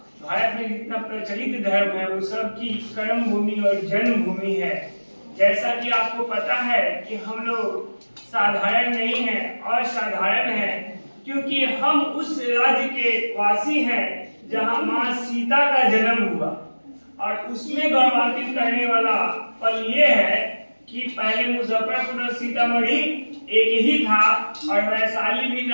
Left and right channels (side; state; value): both; inverted; correlation -1.00